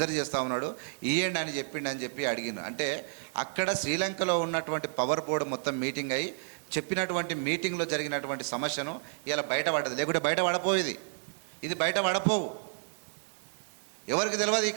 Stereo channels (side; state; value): left; silent; digital silence